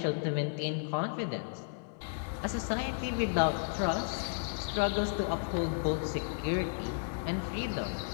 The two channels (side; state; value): right; silent; digital silence